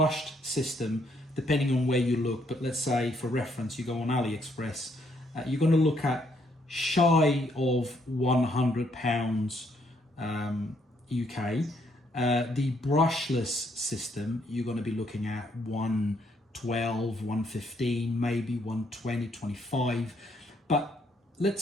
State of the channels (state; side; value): normal; both; correlation 0.71